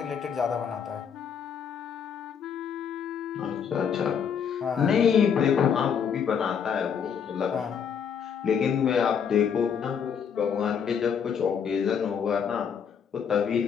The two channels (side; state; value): right; quieter; 7.3 dB